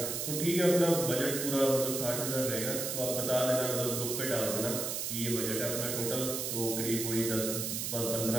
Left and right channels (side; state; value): right; noise; hiss, 2 dB below the sound